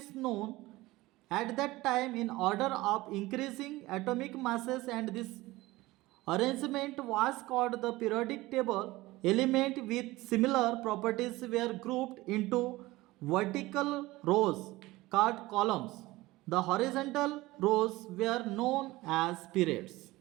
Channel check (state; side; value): quieter; left; 19.2 dB